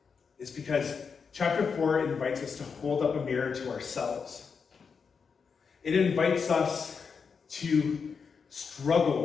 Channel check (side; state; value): right; quieter; 5.8 dB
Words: is because chapter 4 invites us to hold up a mirror to ourselves. It invites us to